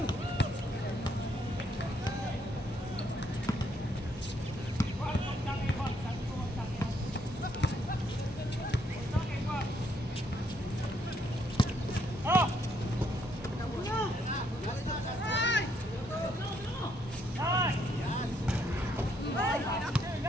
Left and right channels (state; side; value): normal; both; correlation 0.72